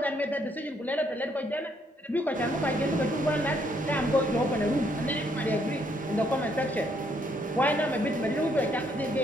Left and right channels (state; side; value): normal; both; correlation 0.71